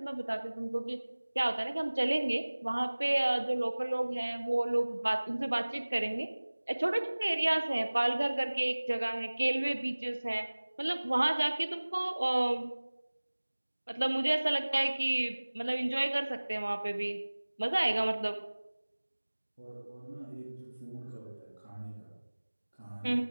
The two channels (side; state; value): both; inverted; correlation -1.00